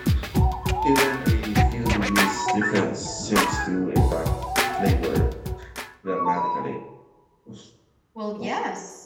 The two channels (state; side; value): identical; both; correlation 1.00